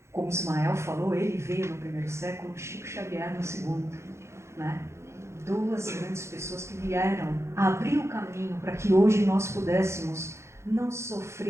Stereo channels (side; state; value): left; late; 0.13 ms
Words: como Ismael falou, ele veio no primeiro século, Chico Xavier no segundo, né? Duas grandes pessoas que vieram abrir o caminho para que hoje nós pudéssemos não